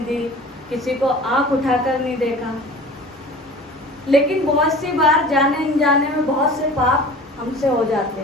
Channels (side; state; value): both; normal; correlation 0.41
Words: दी, किसी को आंख उठाकर नहीं देखा। लेकिन बहुत सी बार जाने अनजाने में बहुत से पाप हमसे हो जाते